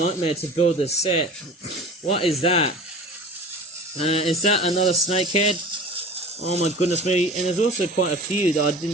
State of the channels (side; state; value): both; normal; correlation 0.37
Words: to build this set. What is that? Is that another snake head? Oh my goodness me. And there's also quite a few that I